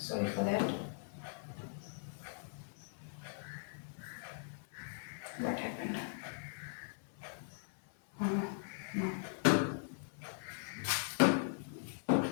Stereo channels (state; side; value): silent; right; 51 dB below the other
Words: for that, what happened.